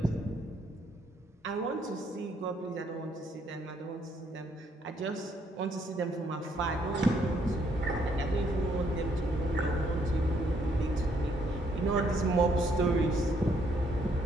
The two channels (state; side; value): normal; both; correlation 0.70